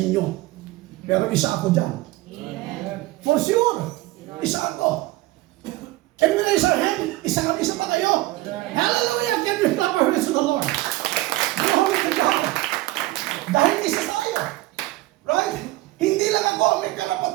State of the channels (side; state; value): left; quieter; 18.7 dB